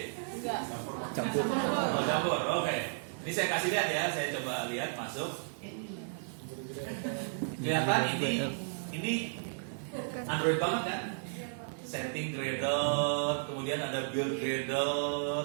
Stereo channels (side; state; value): left; silent; digital silence